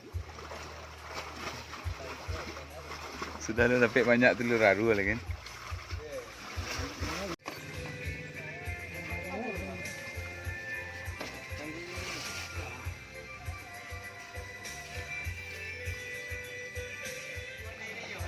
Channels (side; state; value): both; identical; correlation 1.00